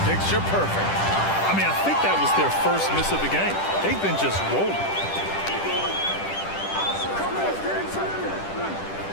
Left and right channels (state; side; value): late; right; 10 ms